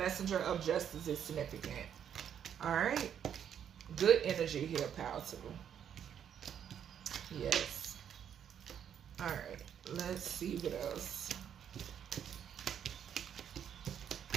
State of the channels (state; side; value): quieter; left; 8.8 dB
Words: of justice is significant. All right, good energy here, Power 2. Yes. All right, let's see what else.